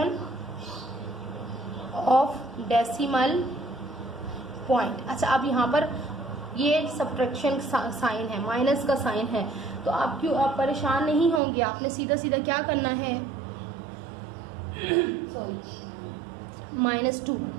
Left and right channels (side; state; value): left; drops out; at 11.4 s